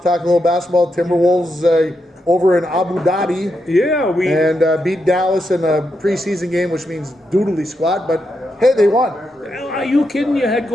well talk a little basketball. Timberwolves over in Abu Dhabi. Yeah, beat Dallas in a preseason game, which means doodly squat. But hey, they won. Are you kidding? You had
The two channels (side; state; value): both; normal; correlation 0.84